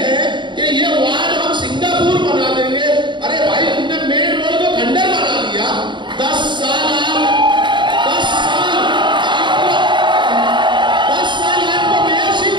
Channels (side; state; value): left; late; 0.23 ms